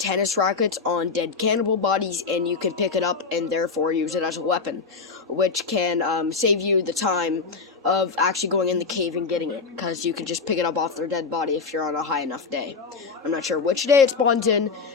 rackets on dead cannibal bodies, and you can pick it up and therefore use it as a weapon, which can save you the time of actually going in the cave and getting it, because you can just pick it up off their dead body if you're on a high enough day. I'm not sure which day it spawns in,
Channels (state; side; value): quieter; right; 4.7 dB